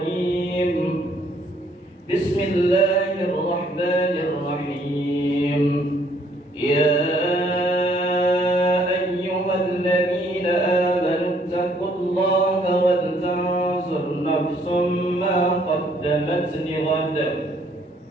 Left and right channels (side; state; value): both; normal; correlation 0.65